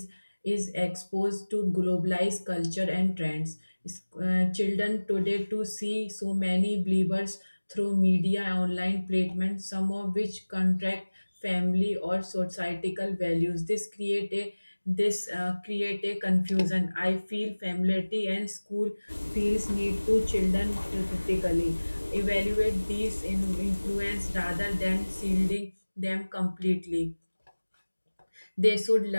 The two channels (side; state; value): both; inverted; correlation -1.00